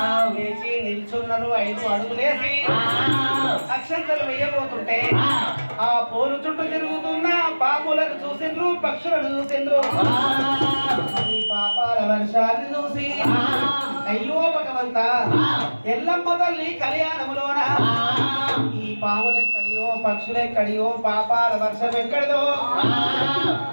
వేసి నిల్చున్నారు 5 అడుగులేసి అక్షంతలు వేయబోతుంటే ఆ పోలు చుట్టూ తిరుగుతున్న పాములను చూసిండ్రు పక్షులను చూసిండ్రు ఈ పాపాల వర్షాన్ని చూసి అయ్యో భగవంత ఎల్లమ్మ తల్లి కళ్యాణములోన ఈ పాములెక్కడియో పక్షులెక్కడియో పాపాల వర్షం ఎక్కడిదో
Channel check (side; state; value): both; inverted; correlation -1.00